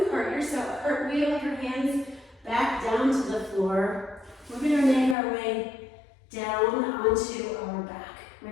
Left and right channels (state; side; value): drops out; right; at 5.2 s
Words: cartwheel your hands back down to the floor. We're going to make our way down onto our back,